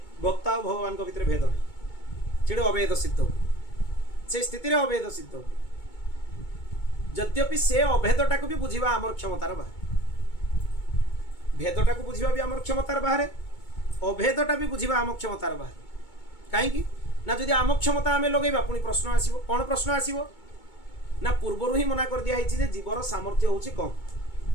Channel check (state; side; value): late; right; 2.2 ms